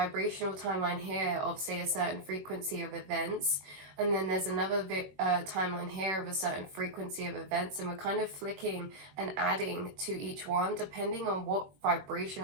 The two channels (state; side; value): late; left; 21 ms